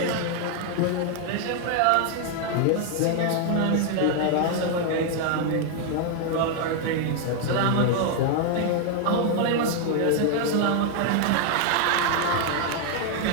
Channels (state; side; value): different; both; correlation 0.00